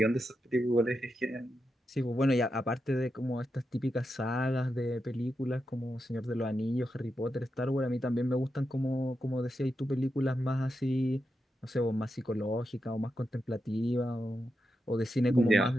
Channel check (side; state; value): both; normal; correlation 0.87